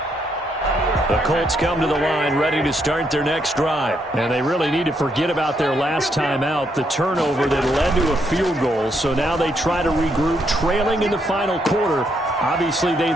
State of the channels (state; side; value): normal; both; correlation 0.76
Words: The Colts come to the line ready to start their next drive. And they really need to forget about their last time out, the turnover that led to a field goal. So now they try to regroup, trailing in the final quarter. Obviously,